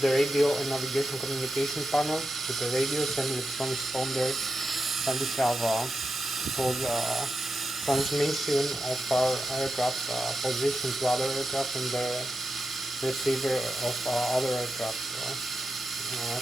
radio and navigation communication panel with the radios and with transponder, and we have all the transmission of our aircraft position to other aircraft and the receiver of other aircraft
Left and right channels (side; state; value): both; normal; correlation 0.89